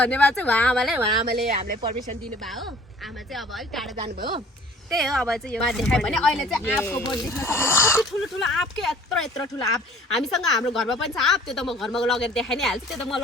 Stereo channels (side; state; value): both; normal; correlation 0.51